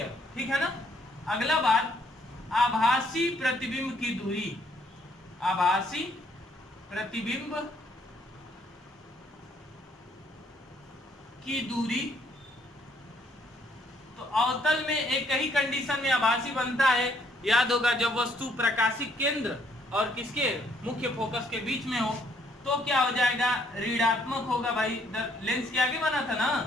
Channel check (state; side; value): normal; both; correlation 0.67